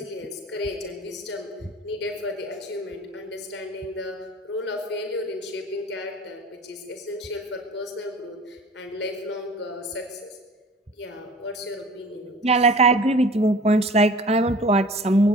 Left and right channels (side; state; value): both; normal; correlation 0.45